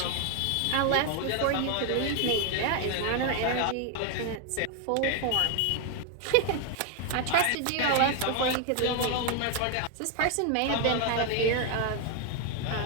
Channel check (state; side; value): different; both; correlation 0.01